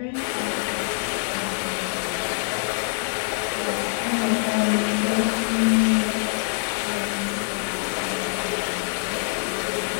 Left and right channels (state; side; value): silent; right; 61 dB below the other